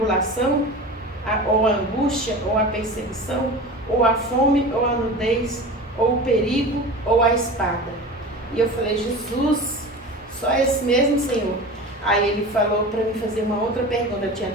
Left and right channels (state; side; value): normal; both; correlation 0.33